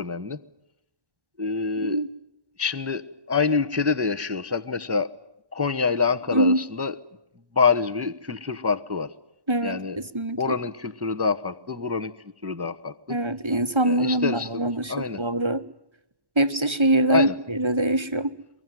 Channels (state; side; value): late; left; 1.3 ms